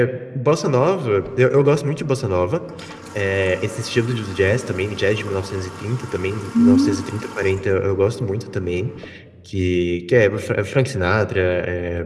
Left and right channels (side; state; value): both; identical; correlation 1.00